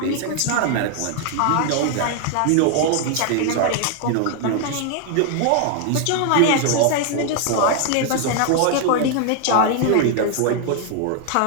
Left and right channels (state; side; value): different; both; correlation 0.00